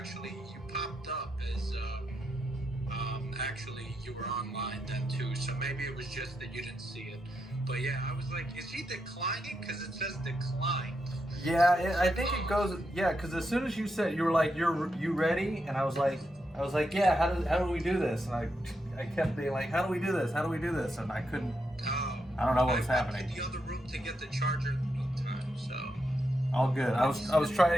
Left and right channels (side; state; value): both; normal; correlation 0.83